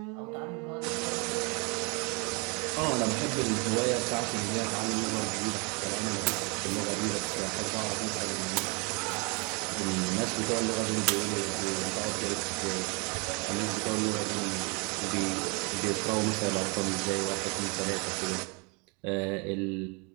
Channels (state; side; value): quieter; left; 32.0 dB